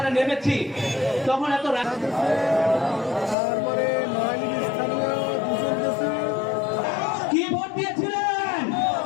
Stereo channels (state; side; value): drops out; right; at 3.4 s